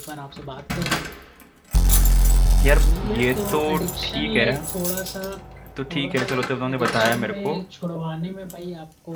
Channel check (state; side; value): identical; both; correlation 1.00